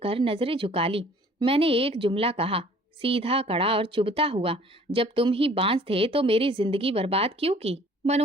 नजरें झुका ली। मैंने एक जुमला कहा, सीधा, कड़ा और चुभता हुआ, जब तुम ही बांझ थे तो मेरी जिंदगी बर्बाद क्यों की?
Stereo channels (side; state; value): both; normal; correlation 0.54